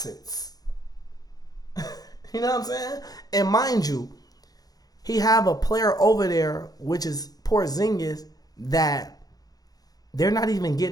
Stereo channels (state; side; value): late; right; 0.18 ms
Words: You know what I'm saying? And mind you, he have a player over there, which is Porzingis, that they're not even